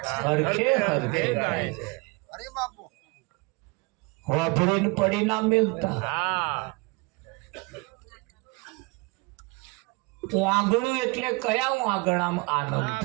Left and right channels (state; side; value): quieter; left; 27.7 dB